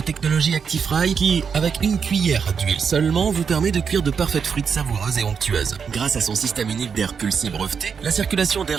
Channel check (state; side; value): quieter; left; 6.4 dB